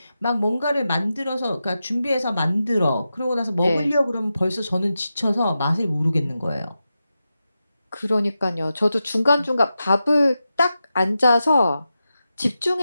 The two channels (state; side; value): inverted; both; correlation -0.90